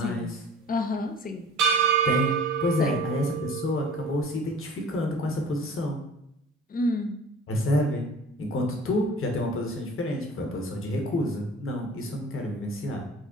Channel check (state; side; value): normal; both; correlation 0.45